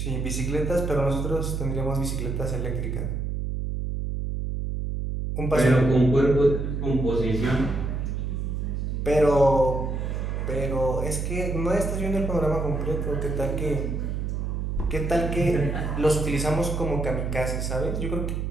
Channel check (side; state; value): right; noise; hum, 2 dB below the sound